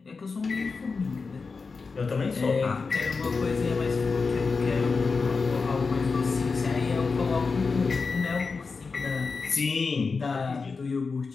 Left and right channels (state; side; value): quieter; right; 4.6 dB